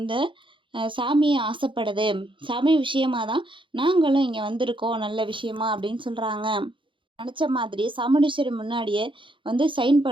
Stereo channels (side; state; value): left; late; 0.24 ms